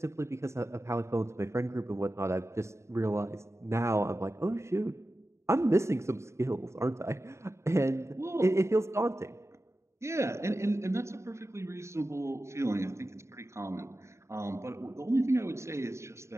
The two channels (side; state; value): left; late; 0.14 ms